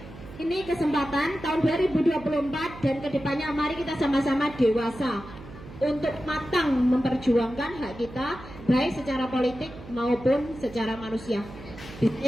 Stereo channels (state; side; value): noise; right; hum, 16 dB below the sound